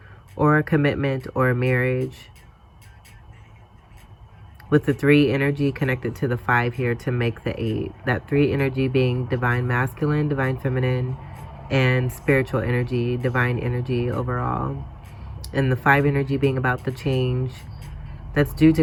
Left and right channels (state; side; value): identical; both; correlation 1.00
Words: or a commitment or a marriage. With the 3 energy connected to the 5 here to make the 8. That 3 energy being divine masculine, divine feminine, and spiritual energy, divine energy overall. And the 5 energy being about the change that's due to